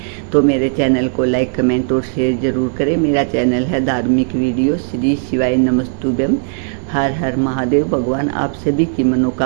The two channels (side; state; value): left; silent; digital silence